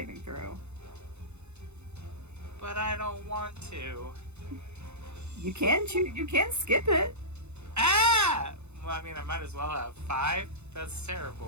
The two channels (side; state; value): left; late; 0.81 ms